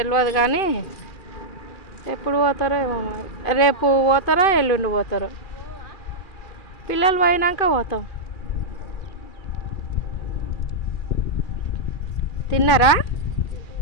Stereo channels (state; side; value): late; right; 2.4 ms